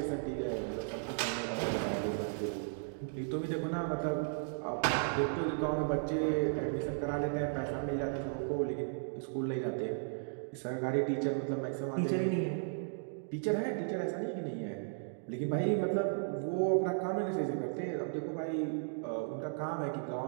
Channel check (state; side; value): silent; left; digital silence